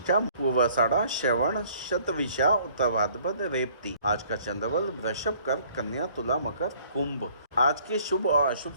पूर्वाषाढ़ा, श्रवण, शतविशा, उत्तर भाद्रपद, रेवती। आज का चंद्रबल वृषभ, कर्क, कन्या, तुला, मकर, कुंभ। आज के शुभ और अशुभ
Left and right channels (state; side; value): inverted; both; correlation -0.58